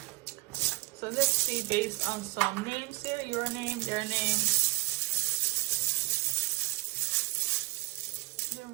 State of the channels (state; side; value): quieter; left; 23.5 dB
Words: So let's see, based on some names here, your name, their name, the